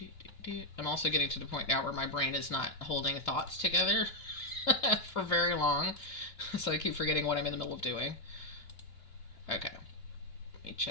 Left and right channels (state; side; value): late; right; 2.7 ms